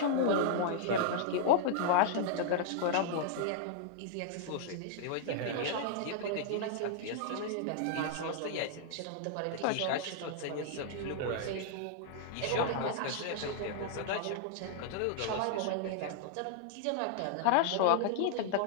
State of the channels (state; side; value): different; both; correlation -0.01